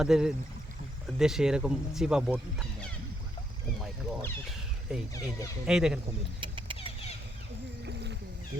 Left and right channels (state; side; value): normal; both; correlation 0.75